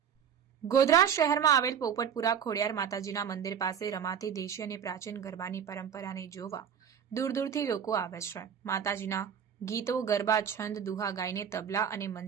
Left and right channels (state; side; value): quieter; left; 8.0 dB